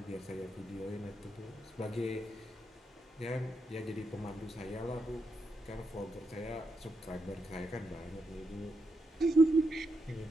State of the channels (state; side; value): normal; both; correlation 0.83